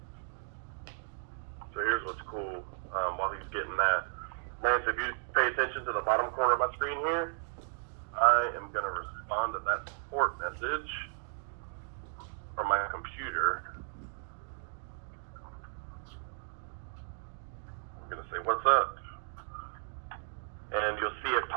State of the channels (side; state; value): left; silent; digital silence